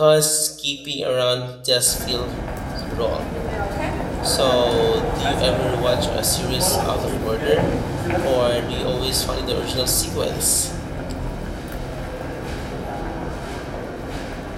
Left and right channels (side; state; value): both; identical; correlation 1.00